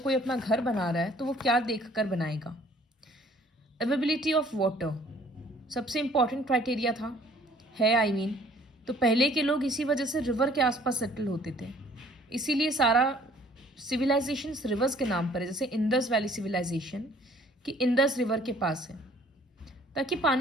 अपना घर बना रहा है तो वो क्या देख कर बनाएगा? अवेबिलिटी ऑफ वाटर सबसे इम्पॉर्टेंट क्राइटेरिया था, है आई मीन. तो पहले के लोग इसी वजह से रिवर के आसपास सेटल होते थे, इसीलिए सारा सिविलाइजेशन रिवर्स के नाम पर है. जैसे इंडस वैली सिविलाइजेशन कि इंडस रिवर के पास है, ताकि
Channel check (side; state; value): both; normal; correlation 0.57